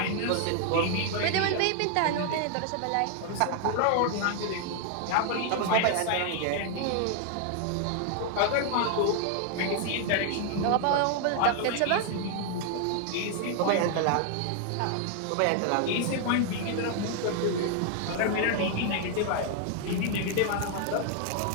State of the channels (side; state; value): both; different; correlation 0.00